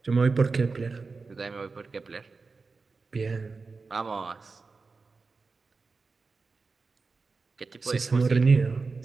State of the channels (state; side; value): quieter; left; 4.3 dB